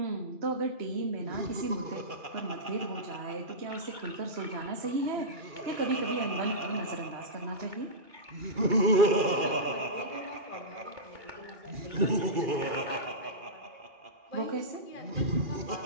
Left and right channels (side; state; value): left; late; 2.4 ms